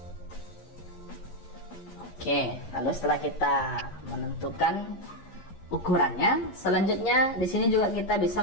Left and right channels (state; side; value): late; right; 11 ms